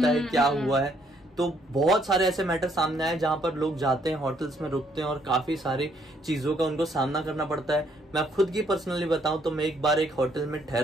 है, क्या हुआ है। तो बहुत सारे ऐसे मैटर सामने आए जहां पर लोग जाते हैं, होटल्स में रुकते हैं और काफी सारी चीजों का उनको सामना करना पड़ता है। मैं खुद की पर्सनली बताऊं तो मैं एक बार एक होटल में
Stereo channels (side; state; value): both; normal; correlation 0.69